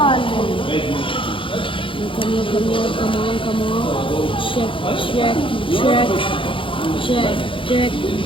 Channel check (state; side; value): late; right; 0.25 ms